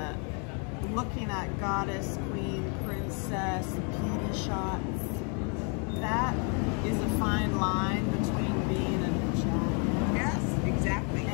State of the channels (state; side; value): quieter; right; 37.7 dB